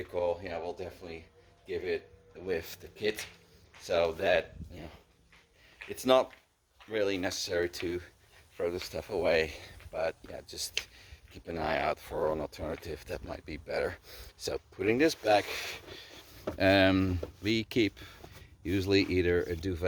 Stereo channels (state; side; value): identical; both; correlation 1.00